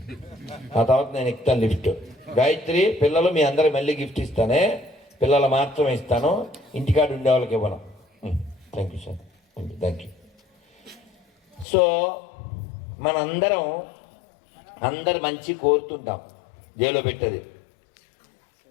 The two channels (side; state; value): right; drops out; at 11.7 s